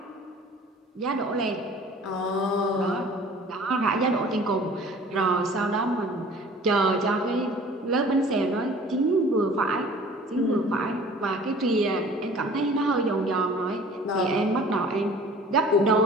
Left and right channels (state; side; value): normal; both; correlation 0.47